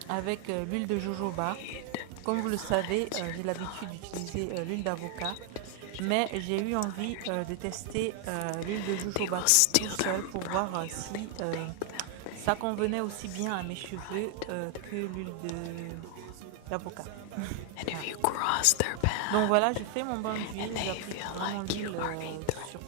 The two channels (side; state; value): both; different; correlation 0.00